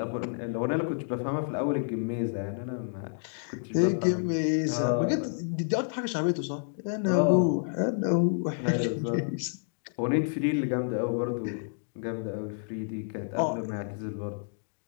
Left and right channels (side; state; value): right; silent; digital silence